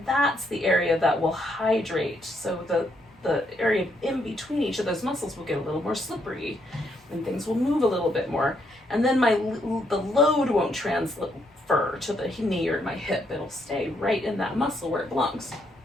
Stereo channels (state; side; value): normal; both; correlation 0.75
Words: that's the area that will hydrate. So the area in between each of those muscles will get a little more slippery, and things will move a little bit more. And then the load won't transfer to the knee or my hip. It'll stay right in that muscle where it belongs.